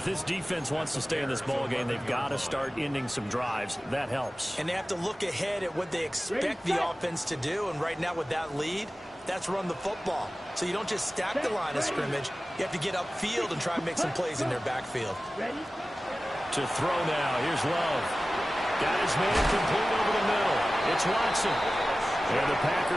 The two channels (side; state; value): both; normal; correlation 0.96